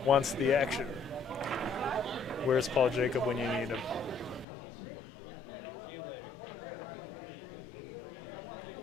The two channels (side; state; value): right; drops out; at 4.5 s